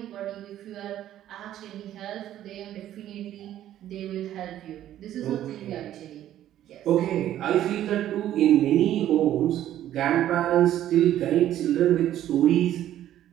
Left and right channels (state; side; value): quieter; left; 12.2 dB